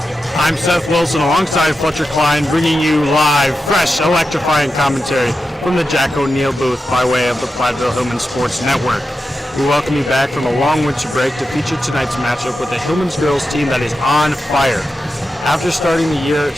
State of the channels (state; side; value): normal; both; correlation 0.90